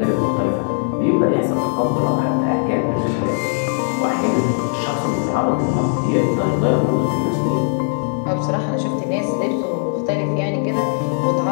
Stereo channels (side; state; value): right; silent; digital silence